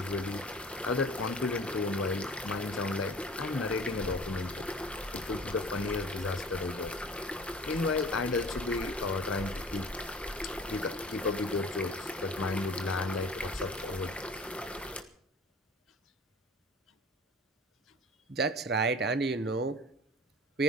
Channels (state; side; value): normal; both; correlation 0.44